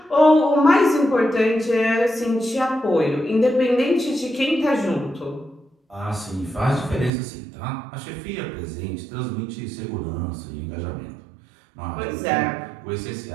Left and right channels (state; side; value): drops out; left; at 7.1 s